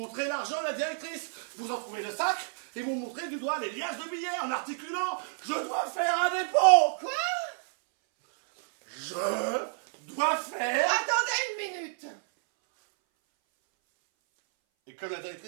l'argent à la directrice. Vous en trouvez le sac et vous montrez du doigt les liasses de billets en articulant « Je dois faire un dépôt !» Quoi? Je dois faire... Attendez une minute. Et comme la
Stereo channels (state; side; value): silent; left; 58 dB below the other